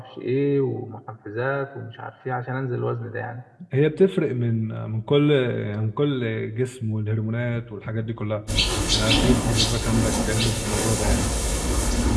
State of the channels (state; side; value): identical; both; correlation 1.00